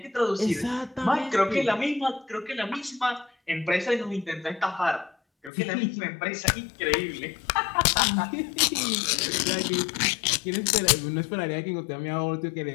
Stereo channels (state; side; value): drops out; right; at 5.5 s